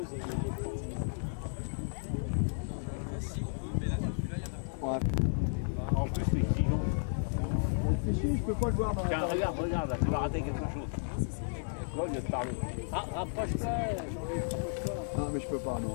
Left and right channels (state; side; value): silent; right; digital silence